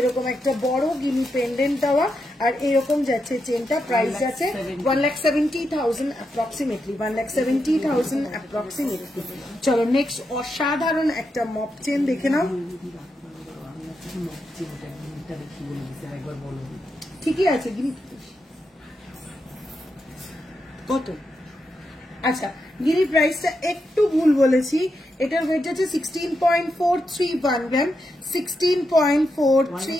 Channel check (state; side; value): normal; both; correlation 0.85